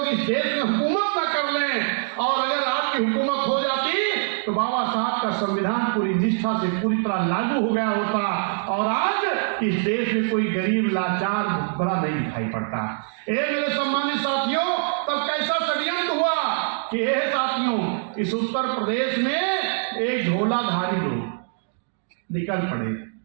इस देश में हुकूमत न कर लें, और अगर आपकी हुकूमत हो जाती तो बाबा साहब का संविधान पूरी निष्ठा से पूरी तरह लागू हो गया होता, और आज इस देश में कोई गरीब लाचार बड़ा नहीं दिखाई पड़ता। ये मेरे सम्मानित साथियों, तब कैसा षड्यंत्र हुआ कि ये साथियों, इस उत्तर प्रदेश में एक झोलाधारी लोग निकल पड़े।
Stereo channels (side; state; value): left; silent; digital silence